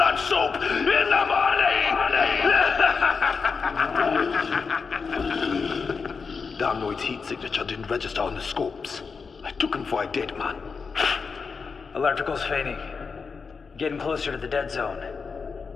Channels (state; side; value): quieter; right; 5.2 dB